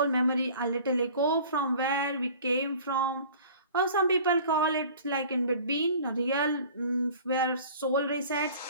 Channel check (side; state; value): both; inverted; correlation -0.46